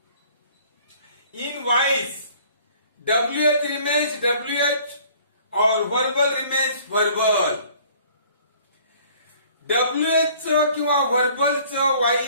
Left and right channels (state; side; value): inverted; both; correlation -0.54